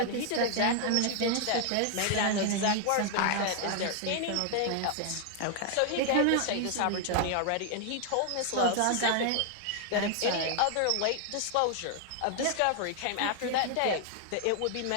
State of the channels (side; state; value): both; different; correlation 0.00